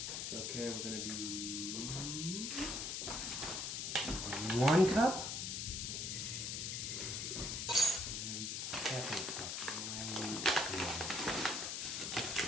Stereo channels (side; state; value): left; noise; hiss, 2 dB below the sound